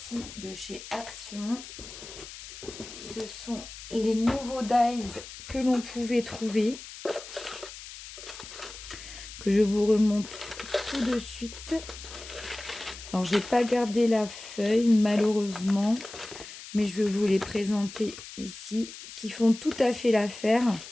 de chez Action. Ce sont les nouveaux dies que l'on pouvait trouver, que je vous remonte tout de suite. Alors, j'ai pas gardé la feuille, malheureusement, mais je vais vous les présenter ici, qui font tout à fait l'affaire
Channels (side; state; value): left; noise; hiss, 13 dB below the sound